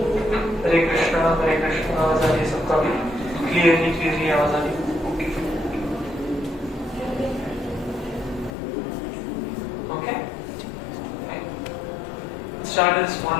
हरे कृष्णा आवाज आ रही है सबका भी? क्लियरली आवाज आ रही है? Start a small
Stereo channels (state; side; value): drops out; right; at 8.5 s